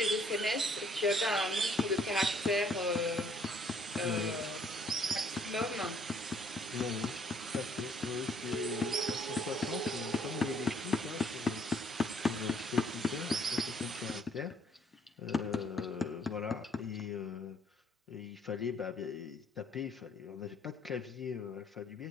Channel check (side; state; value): both; normal; correlation 0.64